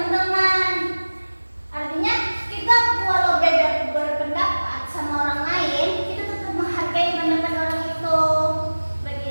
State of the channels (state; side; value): inverted; both; correlation -1.00